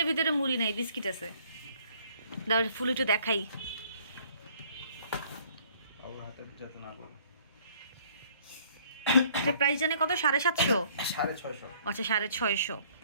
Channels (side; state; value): both; inverted; correlation -0.59